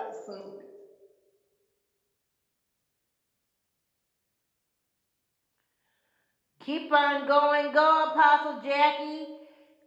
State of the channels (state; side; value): identical; both; correlation 1.00